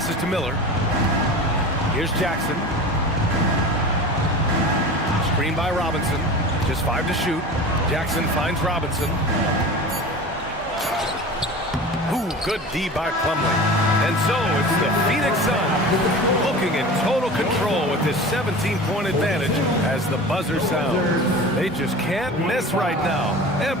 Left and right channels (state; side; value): normal; both; correlation 0.35